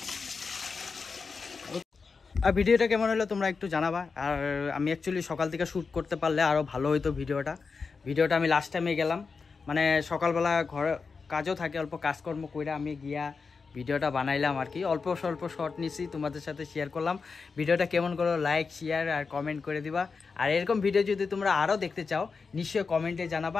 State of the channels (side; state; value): right; quieter; 4.9 dB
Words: আর ভিডিওটা কেমন হলো তোমরা একটু জানাবা। আর আমি অ্যাকচুয়ালি সকাল থেকে শ্যুট করতে পারলে আরও ভালো হইতো ভিডিওটা আমি লাস্ট টাইমে গেলাম, মানে সকালবেলা ঘরে কাজও থাকে, অল্প কাজকর্ম কইরা আমি গিয়া ভিডিওটা বানাইলাম আর কি, অল্প স্বল্প শর্ট নিছি, তোমাদের সাথে শেয়ার করলাম। ভিডিওটা কেমন করো লাইক শেয়ার আর কমেন্ট করে দিবা। আর এরকম ভিডিও যদি তোমরা আরও দেখতে চাও নিশ্চয়ই কমেন্টে জানাবা,